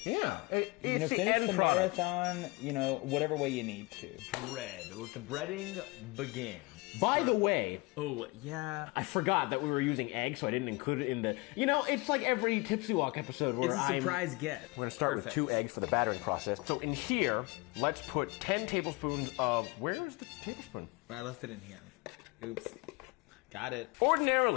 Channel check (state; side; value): quieter; right; 25.3 dB